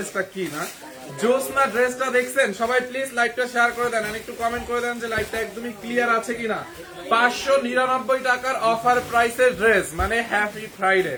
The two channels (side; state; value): both; identical; correlation 1.00